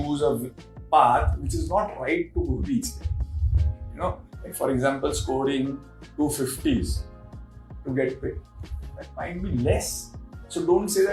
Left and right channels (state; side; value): identical; both; correlation 1.00